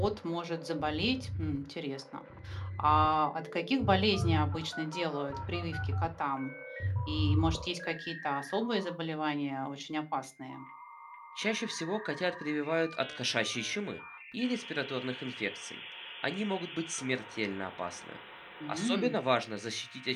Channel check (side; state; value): both; identical; correlation 1.00